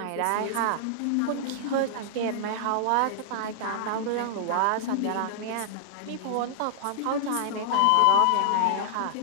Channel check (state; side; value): different; both; correlation -0.01